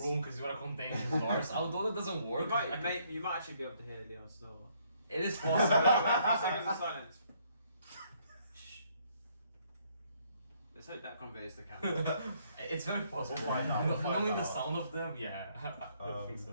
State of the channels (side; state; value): both; inverted; correlation -0.67